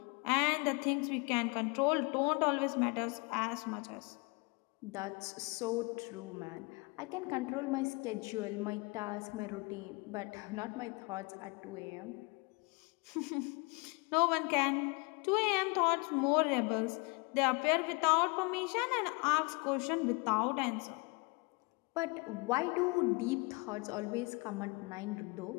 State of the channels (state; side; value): quieter; right; 28.9 dB